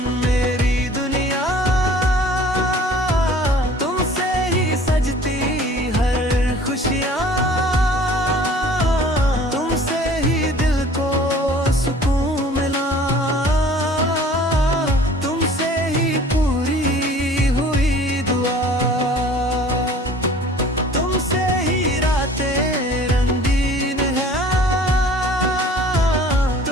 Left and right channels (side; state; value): both; normal; correlation 0.49